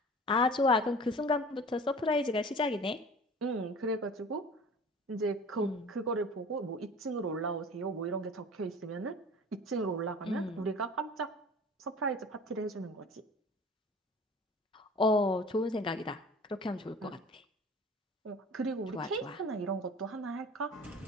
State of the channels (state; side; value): normal; both; correlation 0.42